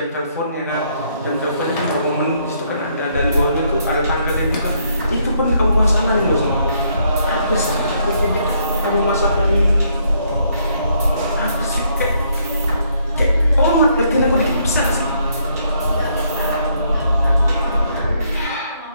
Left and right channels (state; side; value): inverted; both; correlation -0.71